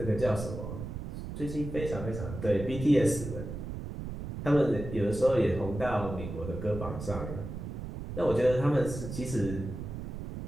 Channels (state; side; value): noise; right; rumble, 8 dB below the sound